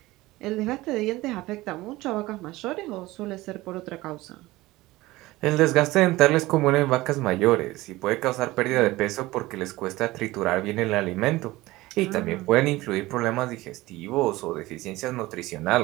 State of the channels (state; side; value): quieter; left; 19.0 dB